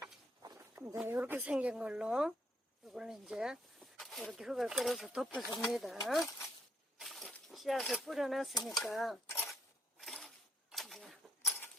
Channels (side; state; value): both; normal; correlation 0.72